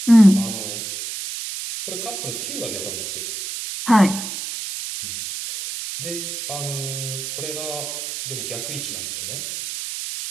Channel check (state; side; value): noise; right; hiss, 6 dB below the sound